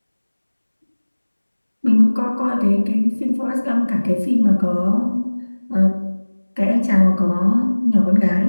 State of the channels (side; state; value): both; inverted; correlation -1.00